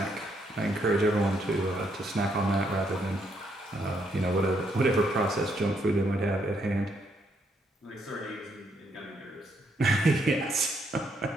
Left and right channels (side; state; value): both; normal; correlation 0.74